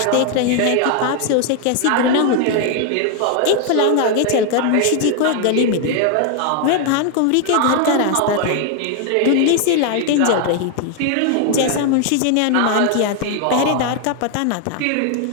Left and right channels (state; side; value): different; both; correlation 0.00